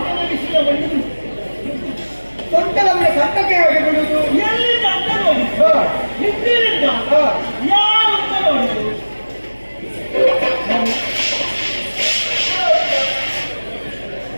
ಸೊಂಟದ ಮೇಲೆ ಕಟ್ಟಕ್ಕೆ ಹಾಕಿ ಬಿಡುದು.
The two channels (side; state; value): both; inverted; correlation -1.00